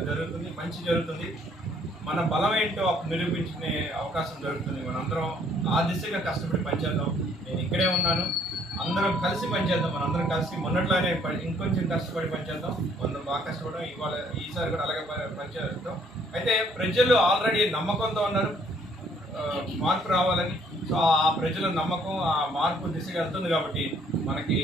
మంచి జరుగుతుంది. మన బలం ఏంటో నిరూపించుకునే అవకాశం దొరుకుతుంది. మనందరం ఆ దిశగా కష్టపడి పనిచేద్దాం. నేను ఇక్కడే ఉన్నాను, అందరం కలిసి పనిచేద్దాం. మనందరం కలిసి మొన్నట్లానే ఇంకొంచెం కష్టపడి పనిచేద్దాం. మనం బాగా కష్టపడడం ఈసారి కూడా అలాగే పనిచేద్దాం. అయితే ప్రజలు ఆల్రెడీ నమ్మకంతో ఉన్నారు మార్పు రావాలని. సో ఆ ప్రజల నమ్మకం ఆ మార్పు దిశగా వెళ్తుంది కాబట్టి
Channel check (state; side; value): normal; both; correlation 0.63